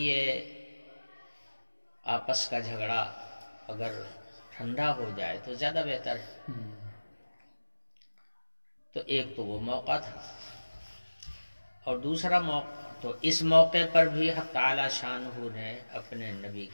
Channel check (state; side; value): inverted; both; correlation -1.00